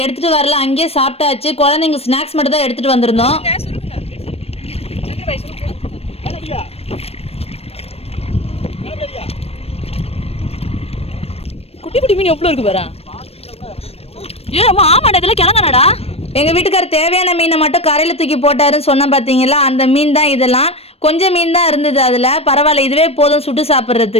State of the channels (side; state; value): right; late; 0.29 ms